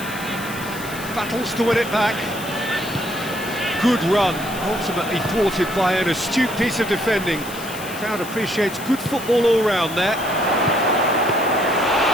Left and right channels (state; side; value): noise; left; hiss, 13 dB below the sound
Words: Battles to win it back. Good run, ultimately thwarted by an astute piece of defending. Crowd appreciates good football all round there.